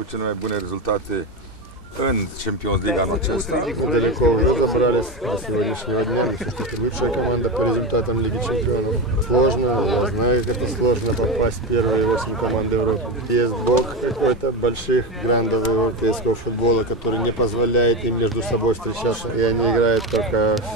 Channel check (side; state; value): both; normal; correlation 0.18